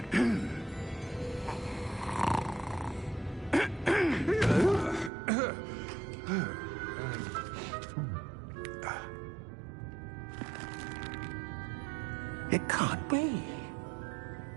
It can't be.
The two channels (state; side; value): drops out; left; at 5.1 s